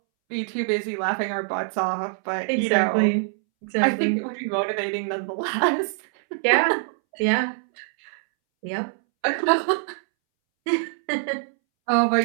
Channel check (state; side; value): silent; left; 63 dB below the other